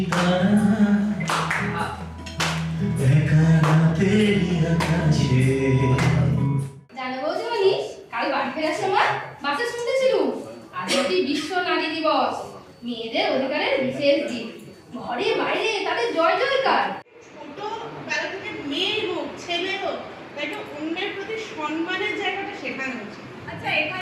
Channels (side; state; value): both; identical; correlation 1.00